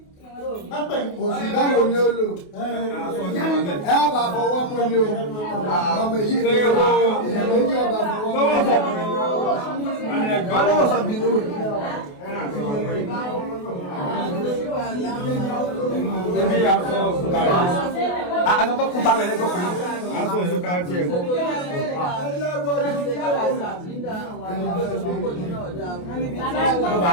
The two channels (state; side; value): late; right; 28 ms